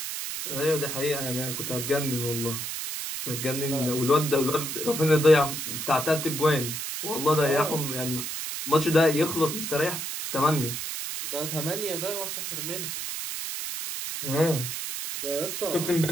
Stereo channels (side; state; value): right; noise; hiss, 5 dB below the sound